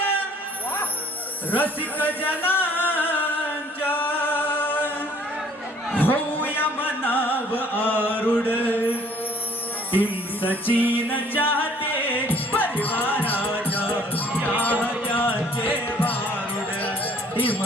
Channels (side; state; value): both; normal; correlation 0.58